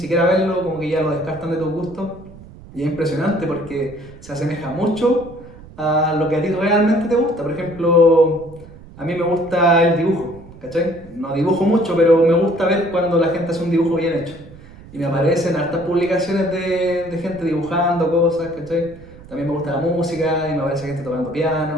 verlo, como que ya lo descartan de tus gustos. Y es impresionante porque se asemeja mucho a lo que a ti realmente te gusta. Por ejemplo, a mí me gusta el dibujo, ¿cachai? No dibujo mucho, pero me gusta ver cuando la gente hace un dibujo bien hecho. Y me aparecen hartas publicaciones de gente dibujando cosas, ¿cachai? También me gusta la música y me aparece gente tocando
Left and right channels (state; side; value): noise; right; rumble, 20 dB below the sound